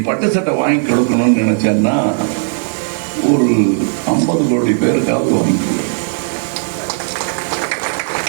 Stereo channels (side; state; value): left; silent; 68 dB below the other